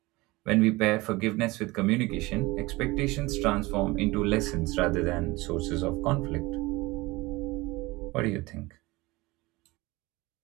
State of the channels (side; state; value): left; quieter; 21.8 dB